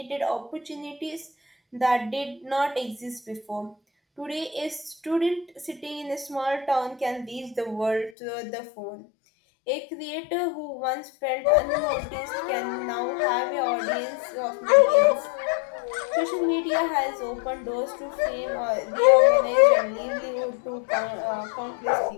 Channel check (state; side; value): drops out; right; at 8.1 s